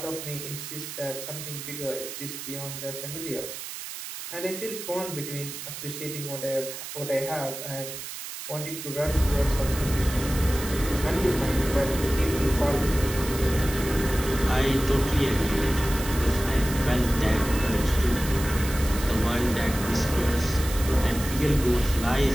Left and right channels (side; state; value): right; noise; hiss, 9 dB below the sound